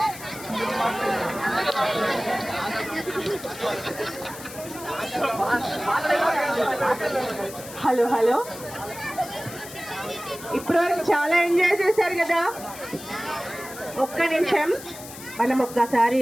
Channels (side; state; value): left; noise; hiss, 14 dB below the sound